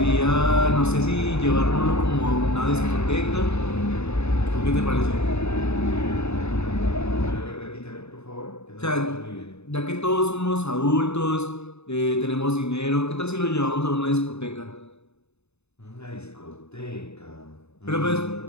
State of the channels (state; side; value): late; right; 0.81 ms